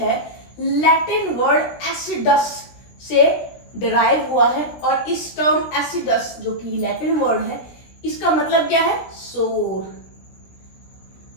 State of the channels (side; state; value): right; late; 17 ms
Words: लैटिन वर्ड एसिडस से डिराइव हुआ है, और इस टर्म एसिडस जो कि लैटिन वर्ड है, इसका मतलब क्या है? सोर.